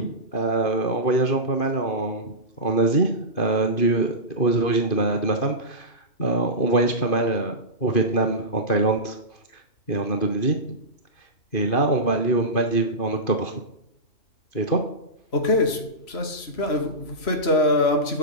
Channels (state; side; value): late; right; 3.0 ms